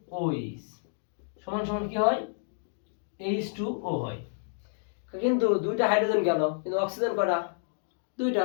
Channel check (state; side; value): silent; right; digital silence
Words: OH সমান সমান কি হয়, H2O হয়। কিন্তু দুইটা হাইড্রোজেন গেল কিন্তু অক্সিজেন কয়টা, দুইটা,